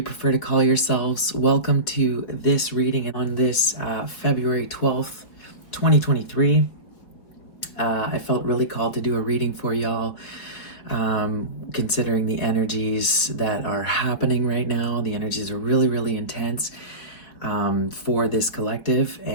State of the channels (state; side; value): late; right; 4.9 ms